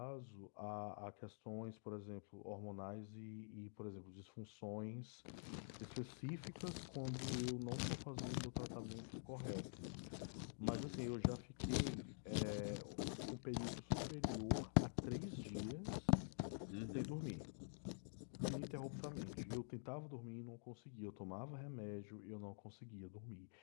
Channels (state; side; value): silent; right; digital silence